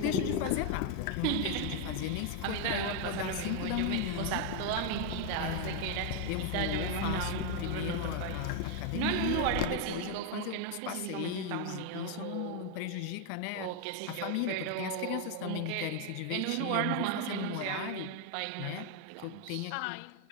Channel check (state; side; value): different; both; correlation 0.00